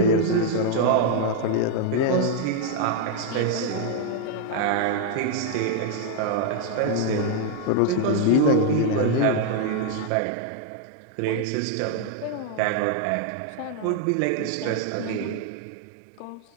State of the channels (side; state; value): both; different; correlation 0.00